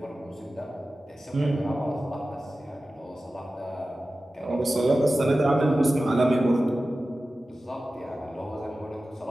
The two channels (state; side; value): normal; both; correlation 0.95